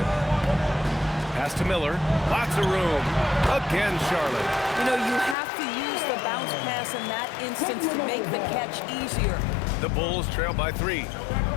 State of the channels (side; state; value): right; drops out; at 5.4 s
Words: Pass to Miller. Lots of room. Again, Charlotte. You know, you have to use the bounce pass in that instance to make the catch easier. The Bulls trail by 3.